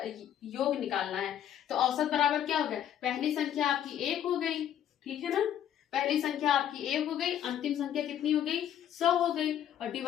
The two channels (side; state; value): right; quieter; 10.3 dB